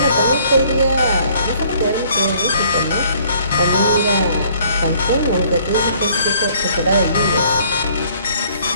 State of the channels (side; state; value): both; inverted; correlation -0.60